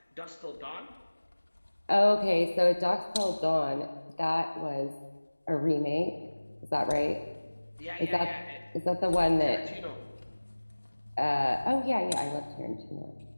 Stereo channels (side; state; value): both; inverted; correlation -1.00